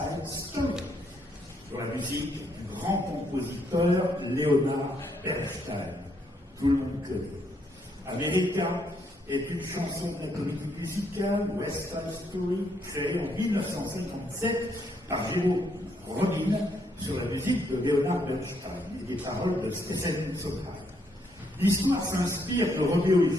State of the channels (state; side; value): normal; both; correlation 0.73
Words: Story, sur la musique du grand compositeur Leonard Bernstein. Tout le monde connaît. America est une chanson de la comédie musicale West Side Story, créée en 1957 par Jérôme Robbins sur la musique de Leonard Bernstein et des paroles de Stephen Sondheim. L'histoire s'inspire de Roméo et